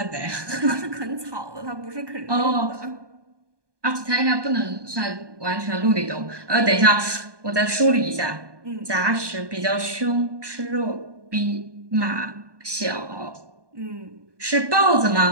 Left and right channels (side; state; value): left; late; 1.2 ms